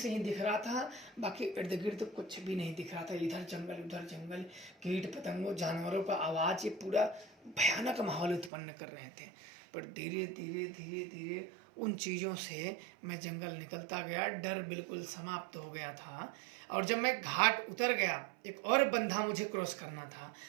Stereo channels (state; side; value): drops out; left; at 8.5 s